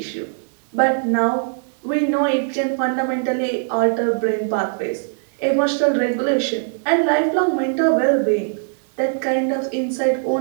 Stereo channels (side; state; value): left; silent; digital silence